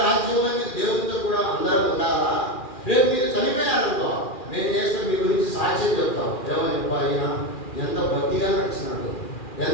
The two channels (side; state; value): right; late; 2.4 ms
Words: రాజ్యంలో మీరు దేవునితో కూడా అందరూ ఉండాలా? రేపు మీరు చనిపోయారనుకో మేము చేస్తే మీ గురించి సాక్ష్యం చెప్తాం. ఏమని ఆయన ఎంత భక్తిగా నడిచినాడు,